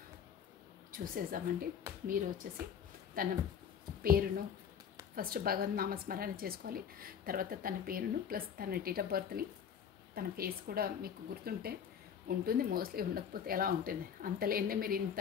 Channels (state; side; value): quieter; right; 7.9 dB